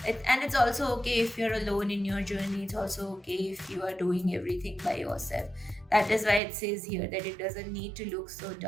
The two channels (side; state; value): left; drops out; at 6.4 s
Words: it's also okay if you're alone in your journey, it's also okay if you are doing everything by yourself. That is why it says here that it doesn't need to look so